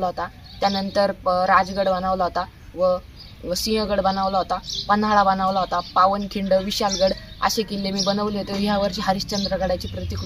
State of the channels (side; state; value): both; identical; correlation 1.00